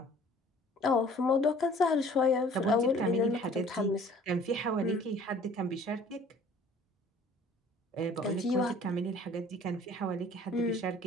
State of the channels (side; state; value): both; normal; correlation 0.52